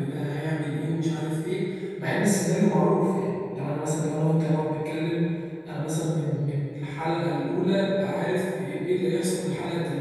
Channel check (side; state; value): both; identical; correlation 1.00